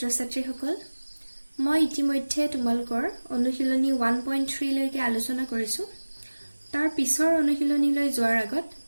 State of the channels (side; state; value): both; inverted; correlation -1.00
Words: মই ইতিমধ্যে তোমালোকৰ অনুশীলনী 1.3 লৈকে আলোচনা কৰিছো। তাৰ পিছৰ অনুশীলনীলৈ যোৱাৰ আগত